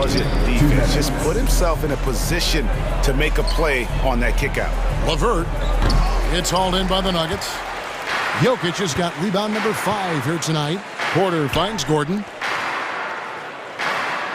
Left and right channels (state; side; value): identical; both; correlation 1.00